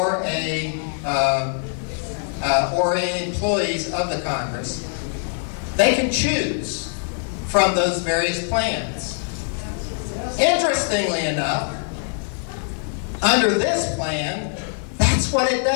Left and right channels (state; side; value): silent; right; 64 dB below the other